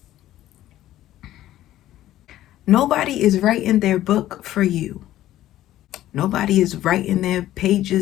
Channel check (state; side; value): quieter; right; 13.8 dB